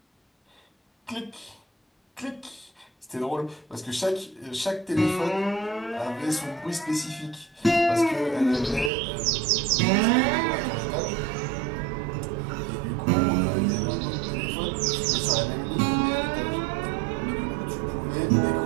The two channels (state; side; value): drops out; left; at 8.9 s